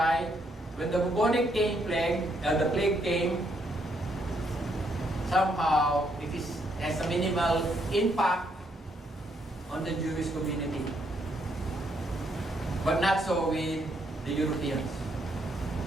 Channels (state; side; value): normal; both; correlation 0.74